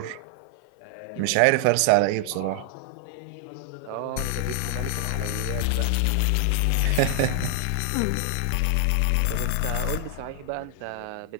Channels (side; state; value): both; different; correlation 0.00